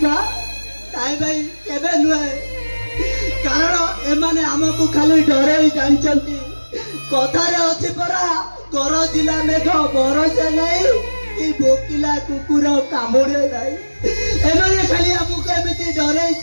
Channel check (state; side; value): inverted; both; correlation -1.00